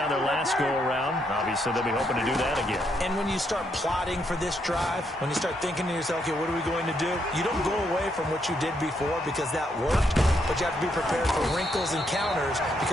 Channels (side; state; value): both; normal; correlation 0.76